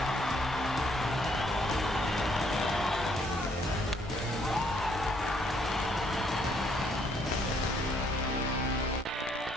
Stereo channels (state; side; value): normal; both; correlation 0.68